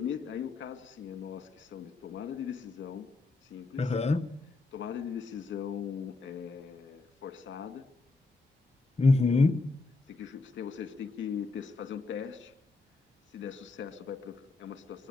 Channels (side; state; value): right; quieter; 3.7 dB